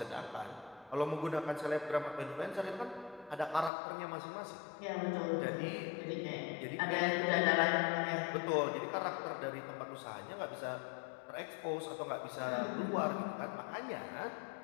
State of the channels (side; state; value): right; drops out; at 3.7 s